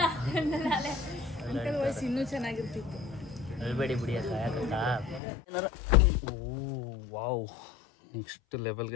ವಯಸ್ಸು ಇನ್ನೂ ಚೆನ್ನಾಗಿರ್ತಿತ್ತು. ಅಳ್ಬೇಡಿ ಬಿಡಿ ಅಕ್ಕ ಯಾಕಕ್ಕ. Oh wow, next level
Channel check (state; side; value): drops out; right; at 5.2 s